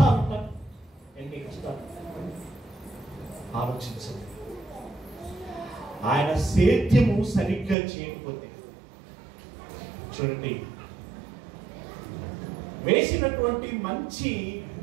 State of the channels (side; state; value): left; drops out; at 7.8 s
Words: ఉంటాయి, ఎన్ని కష్టాలు. ఆలోచించండి. ఆయన సేద్యము సరిగ్గా చేయకపోతే, చూడండి, వేసినటువంటి మంచి